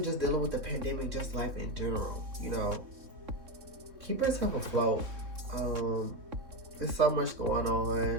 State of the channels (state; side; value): late; left; 3.6 ms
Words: just dealing with the pandemic, just life in general. You know, keep yourself afloat. There's so much going